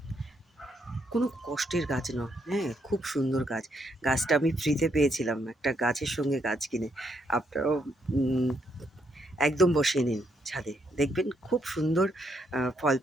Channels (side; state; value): both; normal; correlation 0.76